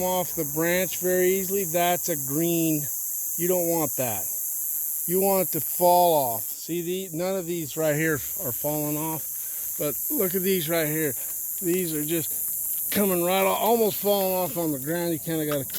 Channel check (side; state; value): both; identical; correlation 1.00